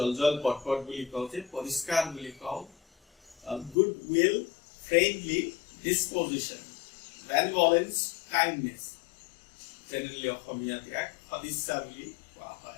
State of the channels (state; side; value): drops out; right; at 3.8 s